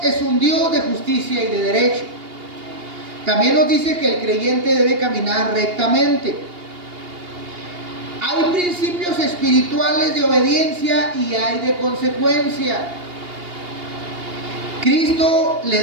es un Dios de justicia y de derecho. También nos dice que el creyente debe caminar rectamente. Hay principios espirituales de obediencia y hay de consecuencia. Cristo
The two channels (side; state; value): left; late; 2.8 ms